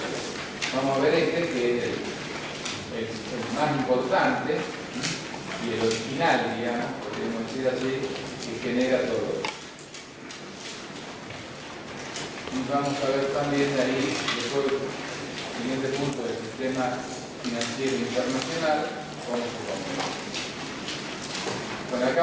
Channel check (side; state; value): both; identical; correlation 1.00